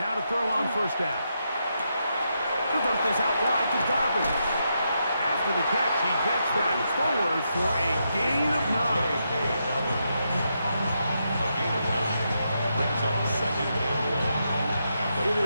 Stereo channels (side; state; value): both; inverted; correlation -0.82